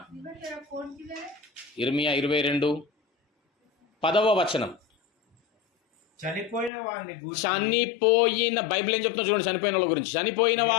22:10 చనిపోయిన బైబిల్ ఏం చెప్తున్నా చూడండి, చనిపోయిన వాళ్ళ గురించి. చనిపోయిన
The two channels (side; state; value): right; drops out; at 6.7 s